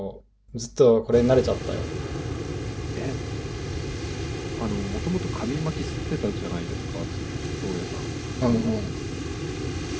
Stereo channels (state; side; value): identical; both; correlation 1.00